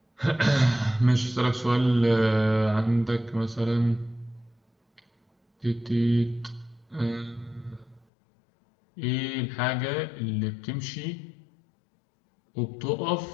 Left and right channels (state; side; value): drops out; right; at 8.1 s